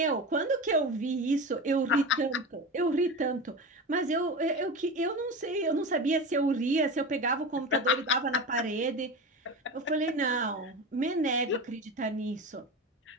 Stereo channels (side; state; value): both; normal; correlation 0.26